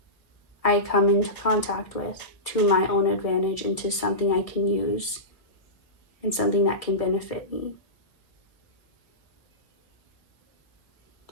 I come into contact with to my own advantage, into something I can use and something that can benefit me?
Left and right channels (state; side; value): late; right; 1.7 ms